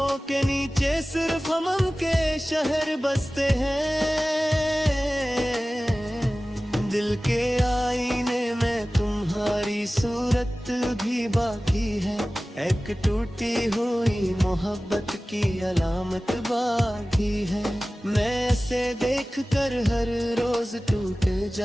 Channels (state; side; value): normal; both; correlation 0.97